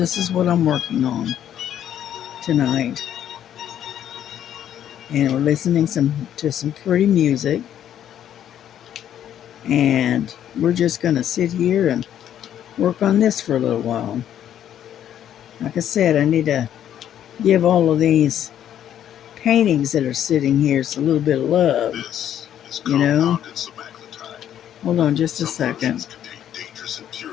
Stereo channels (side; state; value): right; quieter; 10.4 dB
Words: is what I'm working on tonight. And we're listening to some pretty music, and we're just gonna sit here and work on this for a little while. Like I said, I need to give all of these paintings that are sitting here a little bit of love, you know. Hold on just a second.